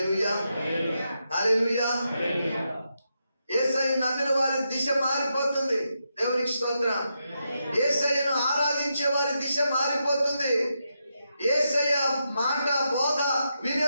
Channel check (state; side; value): inverted; both; correlation -0.84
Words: హల్లెలూయా. యేసయ్య నమ్మిన వారి దిశ మారిపోతుంది. దేవునికి స్తోత్రం. యేసయ్యను ఆరాధించే వారి దిశ మారిపోతుంది. యేసయ్య మాట బోధ